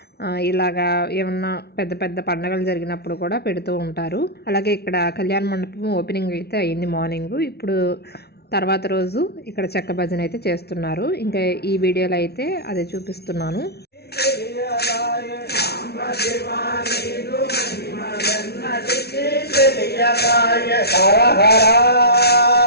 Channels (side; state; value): right; late; 0.47 ms